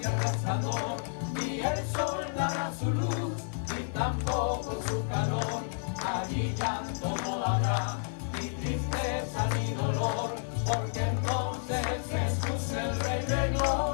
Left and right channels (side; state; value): right; silent; digital silence